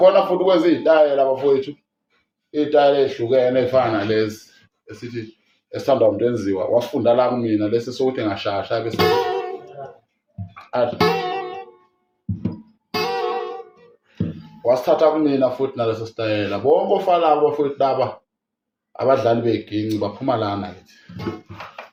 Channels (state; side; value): identical; both; correlation 1.00